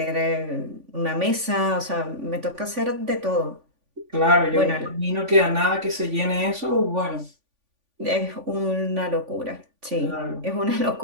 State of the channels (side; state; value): left; late; 3.5 ms